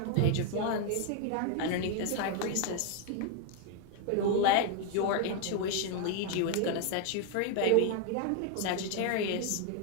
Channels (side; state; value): both; different; correlation 0.01